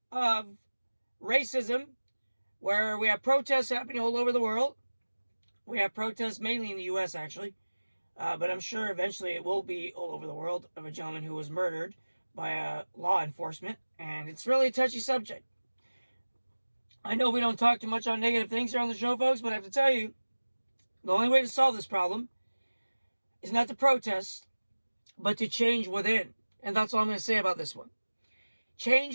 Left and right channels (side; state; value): both; inverted; correlation -1.00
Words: of racism, where we have protests happening all over the world. We have protests mainly in the U.S., actually. But I'm sure eventually it will be all over the world, of a gentleman who was murdered by law enforcement. And it's really a touchy subject. I know we don't talk too much on negative things here on the show, folks, but I have to tell you, the only way to solve this problem is not to protest, but to change within. And that's all I'm going to say about this one.